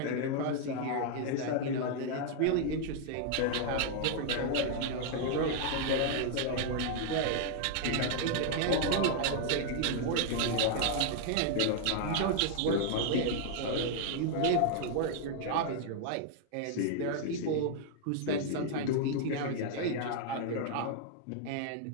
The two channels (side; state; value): both; different; correlation 0.00